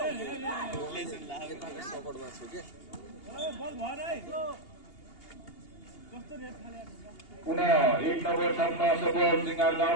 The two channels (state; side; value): late; right; 2.8 ms